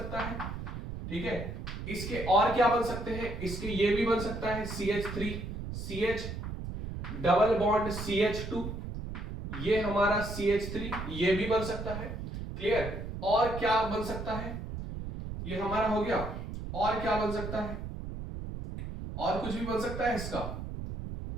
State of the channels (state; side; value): noise; right; rumble, 7 dB below the sound